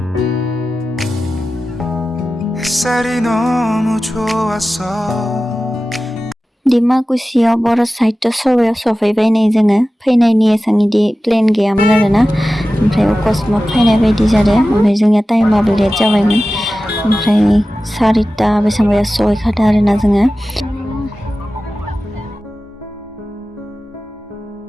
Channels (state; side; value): normal; both; correlation 0.95